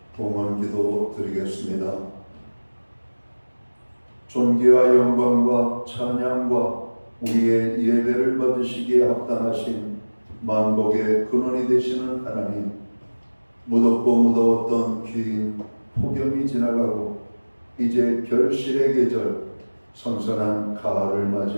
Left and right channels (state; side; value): inverted; both; correlation -1.00